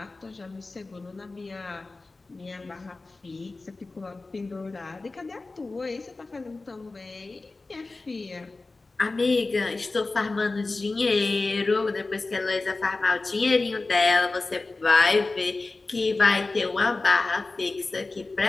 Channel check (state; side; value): quieter; right; 3.5 dB